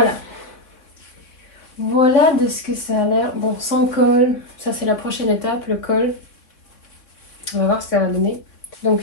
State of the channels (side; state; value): right; late; 3.6 ms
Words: Voilà de ce que ça a l'air. Bon, sans col, ça c'est la prochaine étape, le col. On va voir ce que ça va donner.